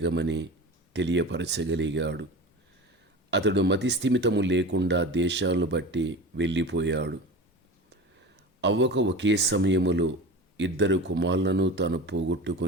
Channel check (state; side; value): normal; both; correlation 0.32